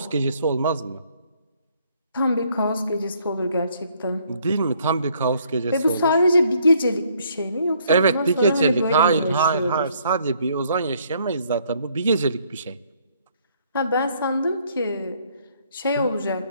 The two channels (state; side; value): inverted; both; correlation -0.66